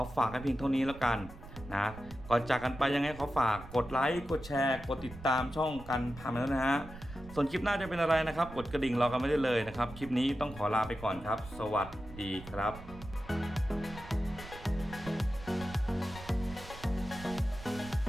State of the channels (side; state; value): right; noise; rumble, 15 dB below the sound